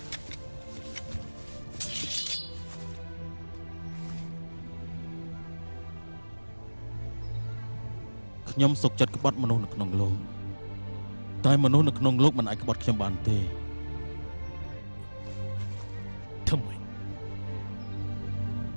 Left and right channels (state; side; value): inverted; both; correlation -1.00